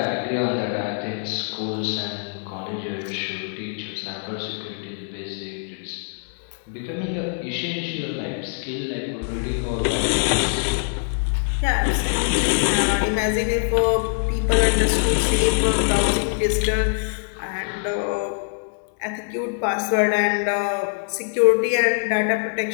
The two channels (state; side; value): silent; right; 63 dB below the other